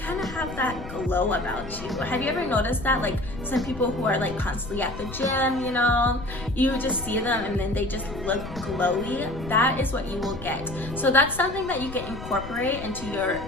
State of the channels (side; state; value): left; noise; rumble, 11 dB below the sound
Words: of have that glow about you. Have you ever noticed that? Like some people who are like constantly at the gym, you know, you just see them and then they just look glowy. That is what you will get. So that's something that you can incorporate into your